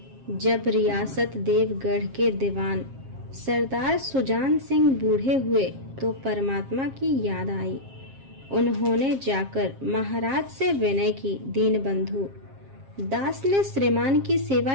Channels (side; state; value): left; late; 7.5 ms